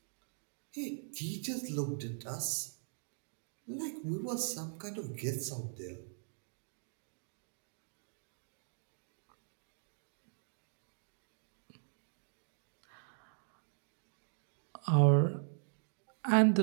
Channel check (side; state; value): left; silent; digital silence